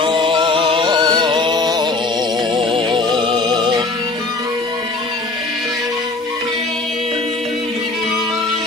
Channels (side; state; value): right; quieter; 3.3 dB